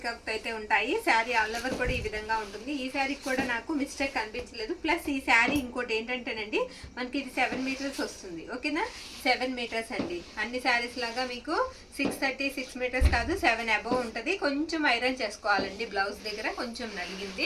అయితే ఉంటాయి. శారీ ఆల్ ఓవర్ కూడా ఈ విధంగా ఉంటుంది. ఈ శారీకి కూడా నాకు మిస్టేక్ కనిపించలేదు. ప్లస్ ఈ శారీ ఇంకోటి ఏంటంటేనండి, మనకి ఇది 7 మీటర్స్ వస్తుంది, ఓకేనా. 7 మీటర్స్ అండి. అన్ని శారీస్ లాగా మీకు 630 6 మీటర్స్ కాదు, 7 అబోవ్ ఉంటుంది. కొంచెం ఐరన్ చేసుకోవాలండి. బ్లౌజ్ దగ్గర కొంచెం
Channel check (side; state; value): both; identical; correlation 1.00